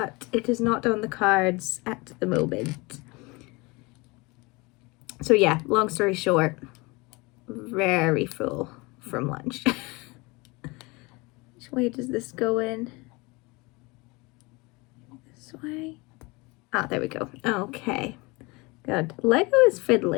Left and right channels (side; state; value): right; quieter; 25.3 dB